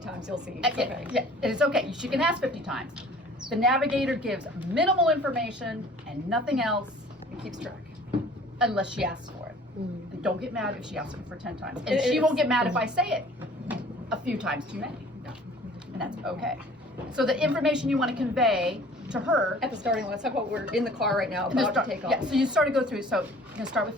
times, you'll see. It's okay. Yeah, it's okay. She can ask 50 times. The navigator gives minimal information and nothing else. It keeps track. Unless she asks for it. And don't get mad if she asks it for 10 times. And she won't get mad if I say it a few times too many. Yeah. And that's okay. So the information you want to convey to her. At the starting line, let's talk about we're in the car right now, about to take off. Yeah, so you start to go through. So you're going to start with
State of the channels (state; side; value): normal; both; correlation 0.50